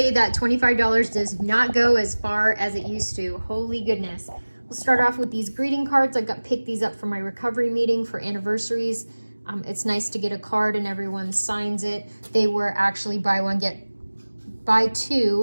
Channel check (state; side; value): inverted; both; correlation -1.00